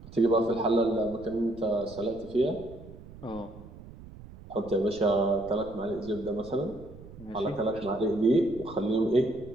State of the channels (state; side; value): noise; right; rumble, 17 dB below the sound